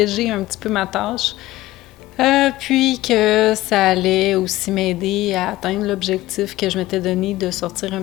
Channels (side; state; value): right; quieter; 16.9 dB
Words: un petit peu ma tâche. Puis que ça allait aussi m'aider à atteindre l'objectif que je m'étais donné de sortir un